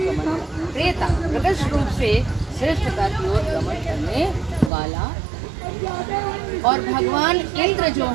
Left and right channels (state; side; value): drops out; left; at 4.7 s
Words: प्रेता प्रकट रूप से श्रेष्ठता की ओर गमन करने वाला, और भगवान इंद्र जो